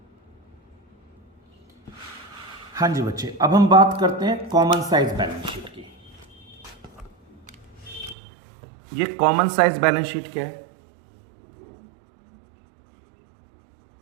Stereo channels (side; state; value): left; drops out; at 8.2 s